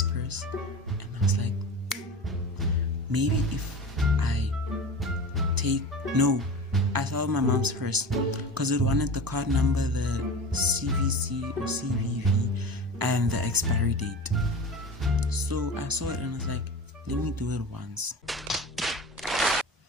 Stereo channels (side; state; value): both; normal; correlation 0.32